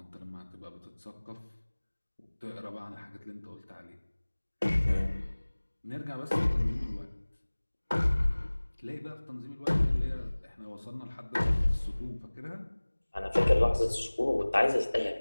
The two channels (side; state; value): both; inverted; correlation -1.00